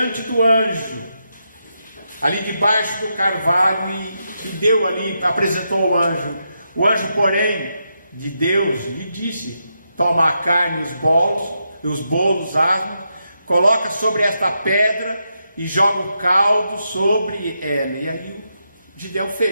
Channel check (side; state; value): both; inverted; correlation -0.84